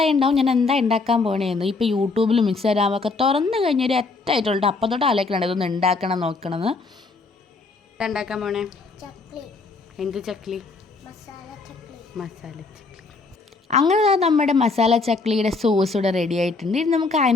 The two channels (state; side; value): quieter; right; 4.0 dB